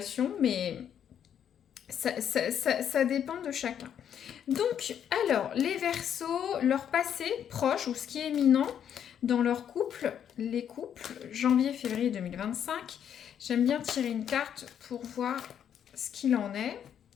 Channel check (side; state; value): right; quieter; 9.0 dB